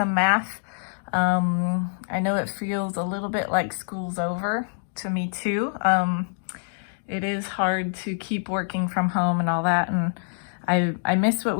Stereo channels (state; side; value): silent; right; digital silence